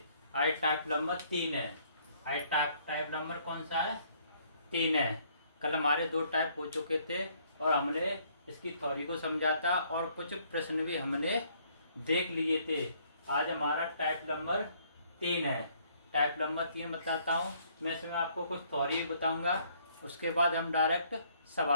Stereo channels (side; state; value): both; inverted; correlation -0.64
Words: आज टाइप नंबर 3 है। आज टाइप नंबर कौन सा है? 3 है। कल हमारे 2 टाइप हो चुके थे और हमने इसकी थ्योरी को समझा था और कुछ प्रश्न भी हमने देख लिए थे। आज हमारा टाइप नंबर 3 है। टाइप नंबर 3 बताता हूँ मैं। इसमें आपको कुछ थ्योरी भी बताऊंगा, उसके बाद हम डायरेक्ट